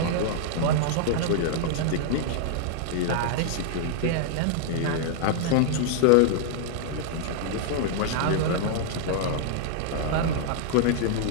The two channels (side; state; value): both; different; correlation -0.01